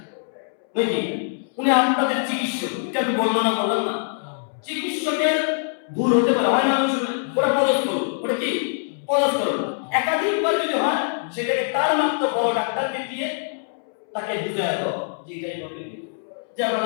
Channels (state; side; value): silent; right; 63 dB below the other